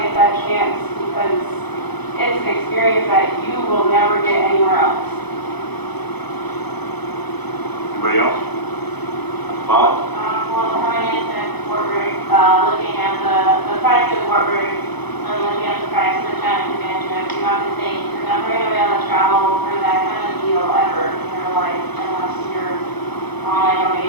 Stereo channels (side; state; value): right; late; 0.99 ms